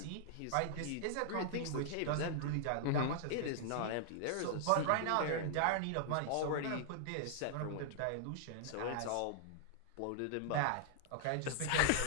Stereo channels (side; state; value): both; different; correlation -0.01